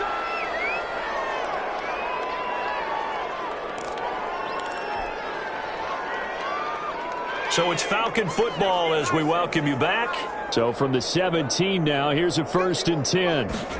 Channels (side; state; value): both; identical; correlation 1.00